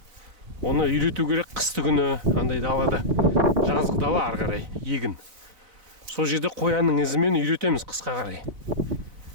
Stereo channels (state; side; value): late; left; 4.0 ms